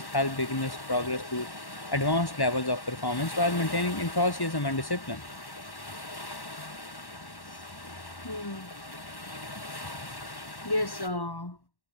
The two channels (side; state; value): right; late; 1.1 ms